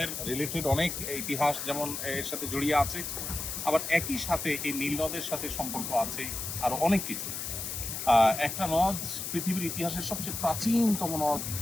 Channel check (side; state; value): left; noise; hiss, 5 dB below the sound